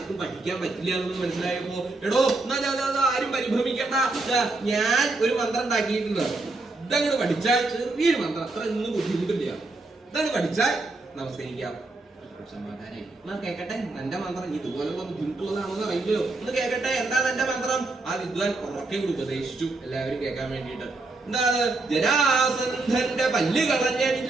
പഠിക്കാൻ പറ്റില്ല എന്ന് മനസ്സിലായപ്പോ ആരും പരിഭ്രമിക്കണ്ട, ഞാൻ ഒരു മന്ത്രം ഉണ്ടാക്കിയിട്ടുണ്ട്. ഇതങ്ങോട്ട് പഠിച്ചാൽ ചെറിയൊരു മന്ത്രം, അത്ര ഒന്നും ബുദ്ധിമുട്ടില്ല. ഇതങ്ങ് പഠിച്ചാൽ നമസ്കരിക്കാം. സമാധാനായി. കേക്കട്ടെ, എന്റെ മന്ത്രം ഇതുപോലുള്ള ബുദ്ധിമുട്ടുള്ളതാണെന്ന് അറിയില്ലല്ലോ. ഒന്ന് കേക്കട്ടെ, എന്താണ് എന്റെ മന്ത്രം? ആ വിദ്വാൻ ഉറക്കെ ഉപദേശിച്ചു എല്ലാവരും കേൾക്കാൻ വേണ്ടിയിട്ട്. എന്താണ്? ജരാസന്ധന്റെ പല്ല്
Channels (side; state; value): left; quieter; 3.2 dB